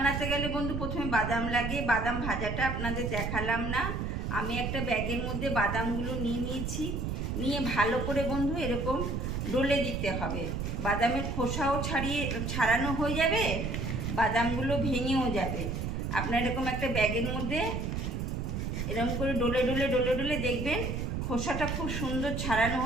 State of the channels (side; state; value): right; noise; rumble, 2 dB below the sound